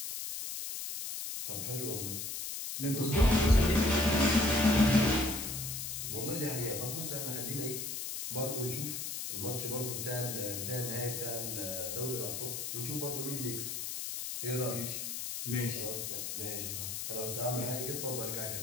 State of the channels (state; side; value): noise; left; hiss, 4 dB below the sound